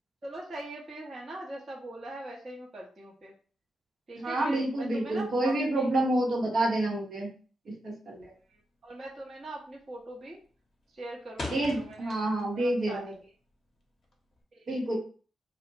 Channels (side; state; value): both; normal; correlation 0.86